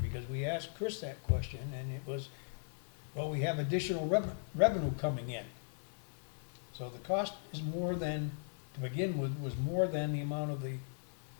because we asked Chris that question, and it was, well, we have additional revenue coming in. So the cost is more than, to begin with, was more than the amount of the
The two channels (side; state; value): right; silent; digital silence